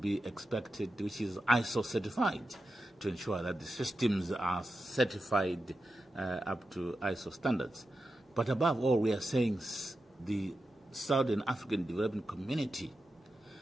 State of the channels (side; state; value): both; normal; correlation 0.89